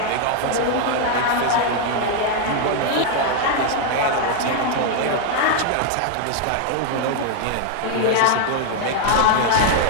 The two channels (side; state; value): both; different; correlation 0.00